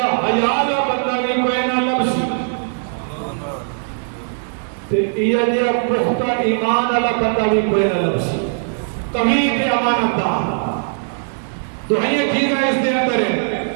حیا دا بندہ بھی کوئی نہ لبسی تے یہ جا پختہ ایمان والا بندہ بھی کوئی نہ لبسی قوی تے امانت دار تو یہ چیزاں اس دے اندر ہیں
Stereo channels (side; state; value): left; silent; digital silence